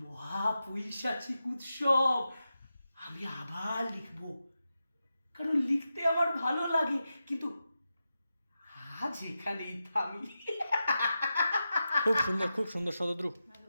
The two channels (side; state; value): both; inverted; correlation -0.90